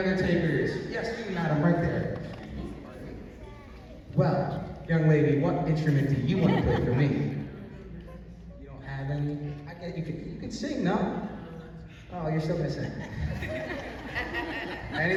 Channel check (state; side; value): identical; both; correlation 1.00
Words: takers? Yes, you, madam, right there. Well, Young lady, what instrument do you want to play for me? You don't have any? I guess you could sing, no? Oh, you're still gonna sing. Any